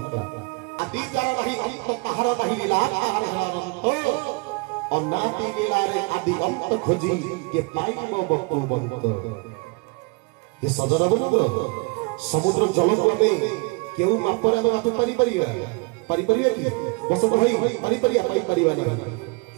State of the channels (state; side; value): quieter; left; 28.8 dB